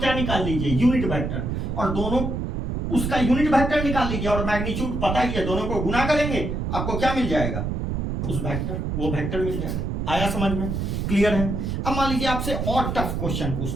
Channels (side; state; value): right; noise; rumble, 2 dB below the sound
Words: निकाल लीजिए, यूनिट वेक्टर, और दोनों उसका यूनिट वेक्टर निकाल लीजिए, और मैग्नीट्यूड पता ही है, दोनों को गुना करेंगे आपको क्या मिल जाएगा, उस वेक्टर, वो वेक्टर मिल जाएगा। आया समझ में, क्लियर है। अब मान लीजिए आपसे और टफ क्वेश्चन